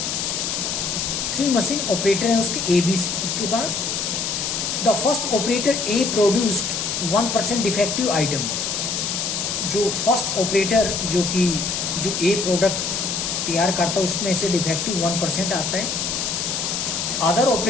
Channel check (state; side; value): noise; left; hiss, 1 dB below the sound